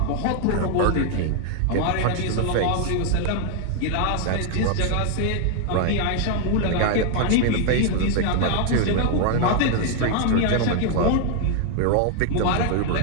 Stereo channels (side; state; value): both; different; correlation 0.00